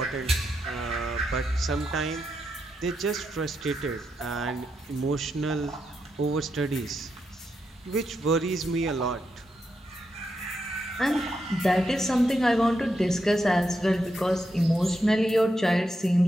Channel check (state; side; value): normal; both; correlation 0.84